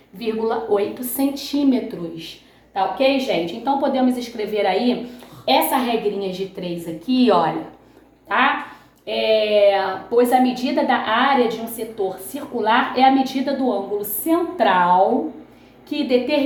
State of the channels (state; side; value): identical; both; correlation 1.00